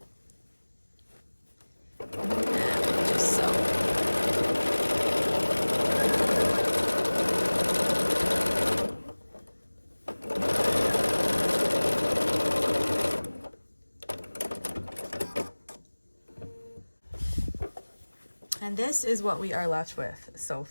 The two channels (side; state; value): both; inverted; correlation -1.00